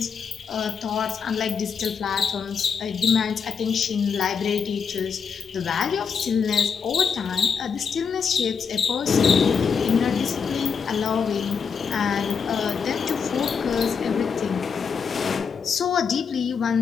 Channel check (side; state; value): right; quieter; 6.2 dB